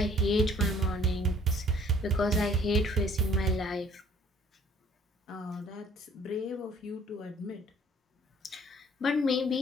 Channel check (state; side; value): normal; both; correlation 0.56